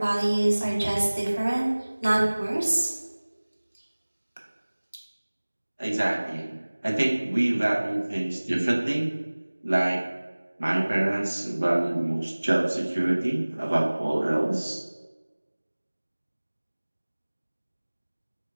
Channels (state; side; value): inverted; both; correlation -1.00